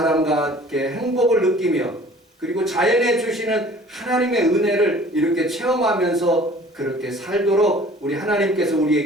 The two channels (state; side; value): normal; both; correlation 0.49